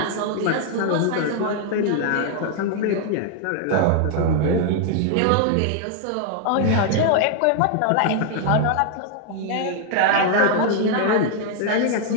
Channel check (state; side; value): different; both; correlation 0.00